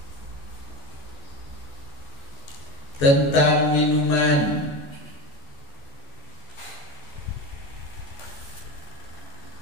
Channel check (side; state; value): right; late; 14 ms